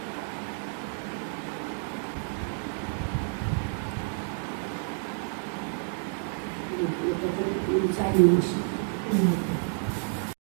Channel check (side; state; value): left; silent; 57 dB below the other